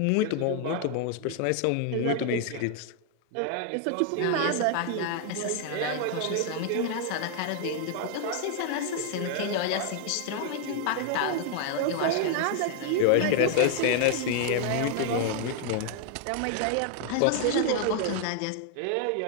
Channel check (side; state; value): both; different; correlation 0.00